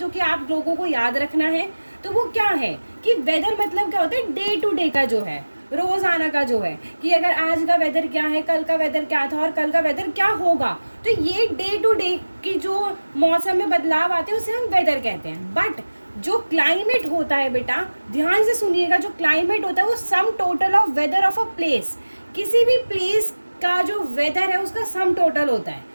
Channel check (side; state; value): both; inverted; correlation -1.00